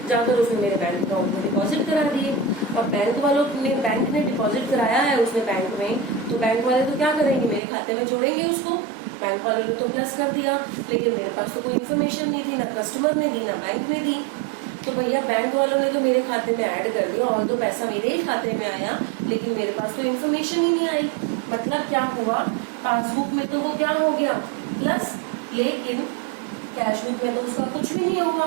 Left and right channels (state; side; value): drops out; left; at 7.6 s